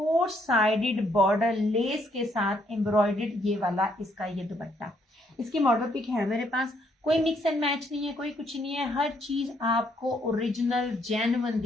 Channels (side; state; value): both; normal; correlation 0.70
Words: साइडेड बॉर्डर लेस के साथ एम्ब्रॉयडर्ड ये वाला इसका ये दुपट्टा। इसकी मॉडल पिक है मेरे पास। कोई मिक्स एंड मैच नहीं है, कोई कुछ नहीं है, हर चीज आपको ओरिजिनल जेन्युइन